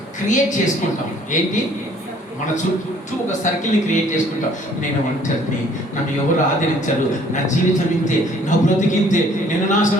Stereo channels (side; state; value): both; normal; correlation 0.58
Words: క్రియేట్ చేసుకుంటాం. ఏంటి, మన చుట్టూ ఒక సర్కిల్ని క్రియేట్ చేసుకుంటాం. నేను ఒంటరిని, నన్ను ఎవరు ఆదరించరు, నా జీవితం ఇంతే, నా బ్రతికింతే, నేను